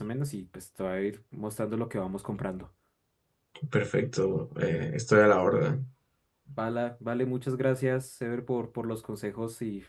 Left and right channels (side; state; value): both; identical; correlation 1.00